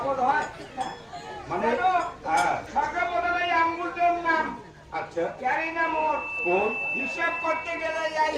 হয় মানে হ্যাঁ ছাকা বদলাই আঙ্গুলটার নাম আচ্ছা ক্যারি না মোর কোন হিসাব করতে গেলে এই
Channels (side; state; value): both; identical; correlation 1.00